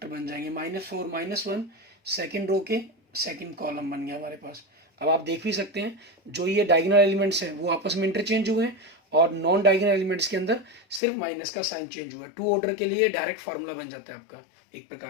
बन जाएंगे, -4 -1, सेकेंड रो के सेकेंड कॉलम बन गया हमारे पास। अब आप देख भी सकते हैं जो ये डायगोनल एलिमेंट्स हैं वो आपस में इंटरचेंज हुए हैं और नॉन डायगोनल एलिमेंट्स के अंदर सिर्फ माइनस का साइन चेंज हुआ है। 2 ऑर्डर के लिए डायरेक्ट फार्मूला बन जाता है आपका एक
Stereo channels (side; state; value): right; drops out; at 11.0 s